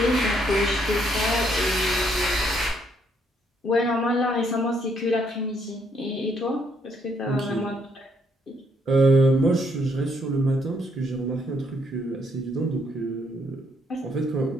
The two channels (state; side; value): normal; both; correlation 0.71